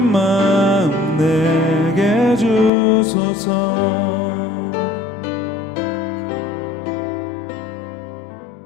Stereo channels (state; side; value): drops out; right; at 2.7 s